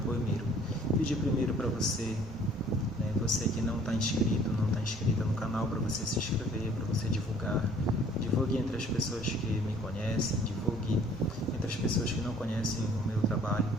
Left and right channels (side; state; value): both; normal; correlation 0.55